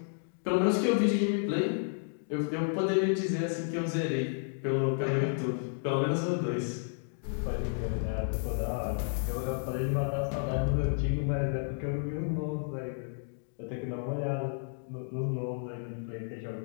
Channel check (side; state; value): right; silent; digital silence